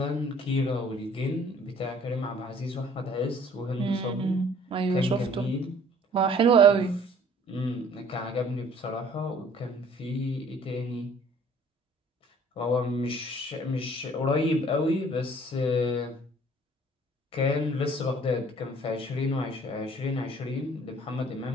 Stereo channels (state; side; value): normal; both; correlation 0.55